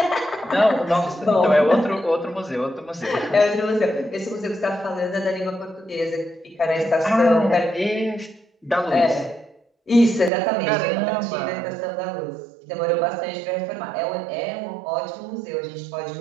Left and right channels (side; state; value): left; drops out; at 10.3 s